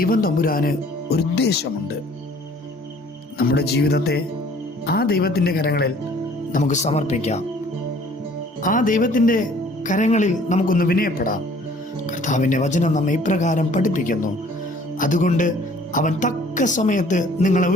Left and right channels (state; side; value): normal; both; correlation 0.55